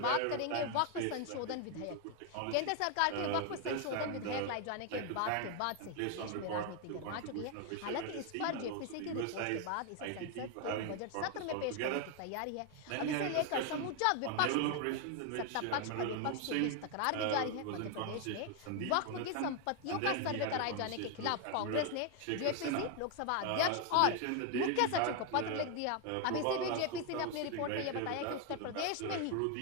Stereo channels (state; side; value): different; both; correlation 0.00